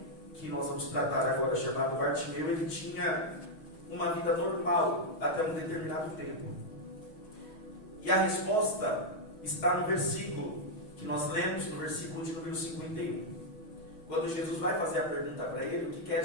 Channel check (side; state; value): right; late; 6.2 ms